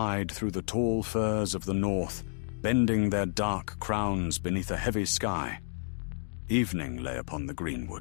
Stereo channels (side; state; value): right; silent; digital silence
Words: through the tall firs of the north, bending their dark crowns beneath a heavy sky. Evening lay upon the